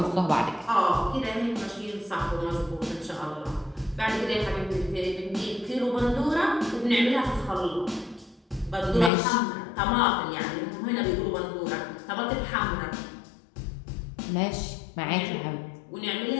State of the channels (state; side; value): drops out; right; at 9.1 s